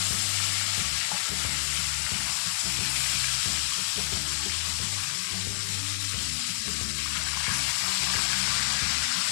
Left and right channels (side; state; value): right; silent; 59 dB below the other